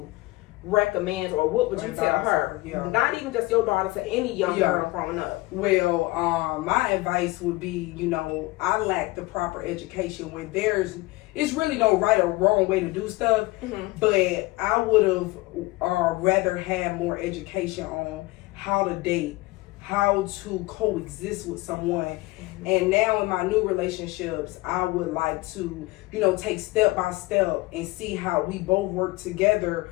recommend, or what would you tell her? Not even just your daughter, to any young girl growing up. Well, my advice would be, you know, I lack the proper education when it's really no right or wrong way to do stuff, but I would have rather had more education on how to date, how to coexist with someone. And now in my new relationships, I would like to, you know, take step by step and see how we both work together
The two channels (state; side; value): quieter; right; 21.0 dB